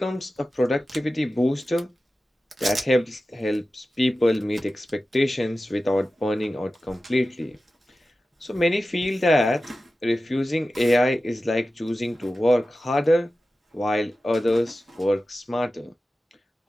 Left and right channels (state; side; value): normal; both; correlation 0.94